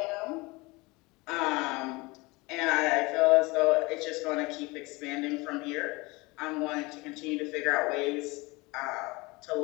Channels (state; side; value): quieter; right; 24.2 dB